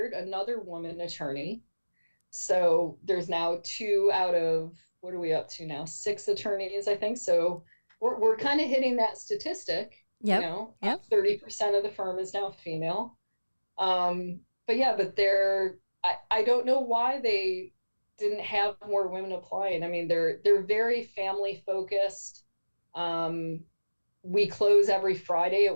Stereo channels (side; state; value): both; inverted; correlation -1.00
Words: another woman attorney. So there's now 2 out of, what are we up to now? 6 attorneys, I think. So we're kind of hitting that statistic. Yep. 30% of the firm is now female. But I don't know why they didn't have more women applying. I mean, they're very family focused. We close every Friday at